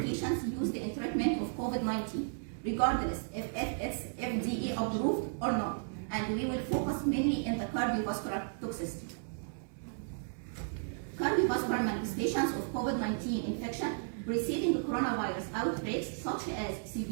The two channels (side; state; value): left; silent; digital silence